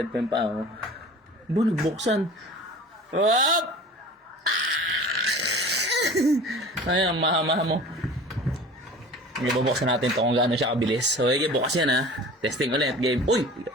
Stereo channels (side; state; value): both; normal; correlation 0.40